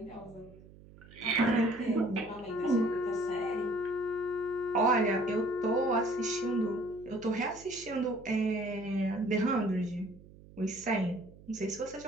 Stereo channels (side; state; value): right; noise; hum, 21 dB below the sound